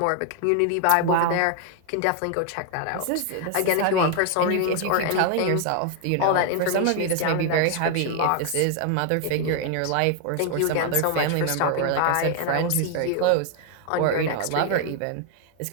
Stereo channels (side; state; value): both; different; correlation 0.00